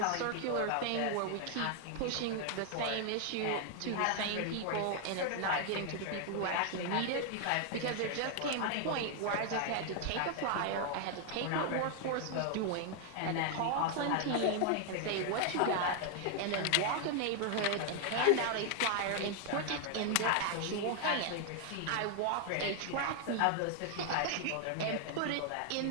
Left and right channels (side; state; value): both; different; correlation 0.00